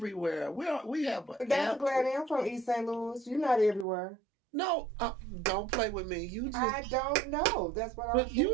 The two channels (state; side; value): drops out; left; at 3.9 s